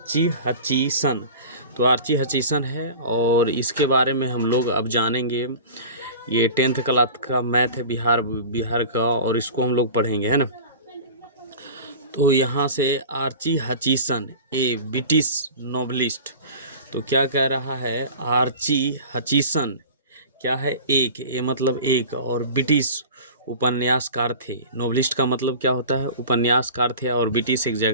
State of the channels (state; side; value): inverted; both; correlation -0.36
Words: हचीसन। तो आर्ची हचीसन है और इसके बारे में हम लोग अब जानेंगे। ये 10th क्लास का मैथ है बिहार का, और इसको हम लोग पढ़ेंगे, है ना। तो यहाँ से आर्ची हचीसन, ए ब्रिटिश नोवेलिस्ट। तो क्या कह रहा है, आर्ची हचीसन क्या है, एक, ये मतलब एक, और ब्रिटिश उपन्यासकार थे। नोवेलिस्ट का मतलब क्या होता है, उपन्यासकार थे, और ब्रिटिश एक